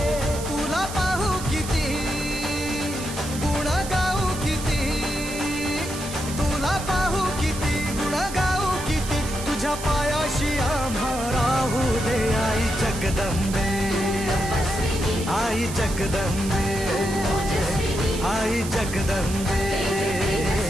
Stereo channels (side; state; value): right; noise; hiss, 10 dB below the sound